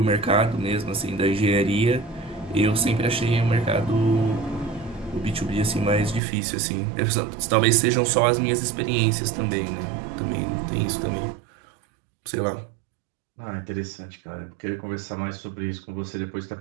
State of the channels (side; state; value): left; drops out; at 6.2 s